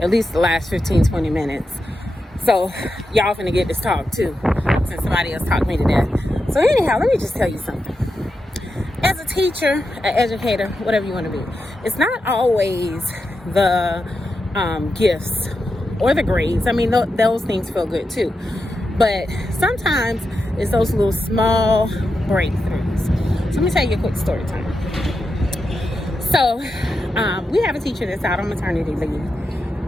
least the last 15, 20 minutes. So, y'all finna get this talk too, since somebody else talked me to death. So anyhow, let me just tell you something. As a teacher, an educator, whatever you want to be, it's not always the gifts or the grades. I mean, those things feel good too. But sometimes it's those little small breakthroughs. So let me tell you a quick story time. So we have a teacher that's out on maternity leave.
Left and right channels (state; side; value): normal; both; correlation 0.88